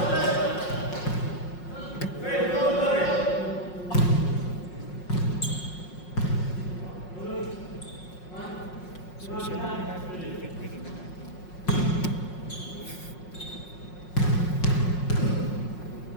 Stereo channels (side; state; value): right; late; 5.5 ms